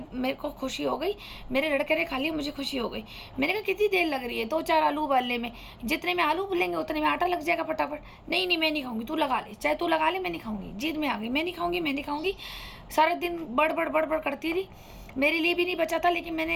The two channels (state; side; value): identical; both; correlation 1.00